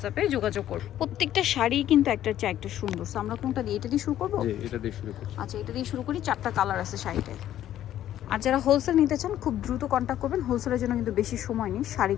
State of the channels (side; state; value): right; quieter; 12.0 dB